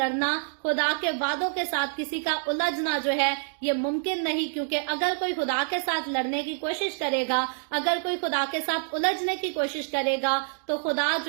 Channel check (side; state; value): left; silent; digital silence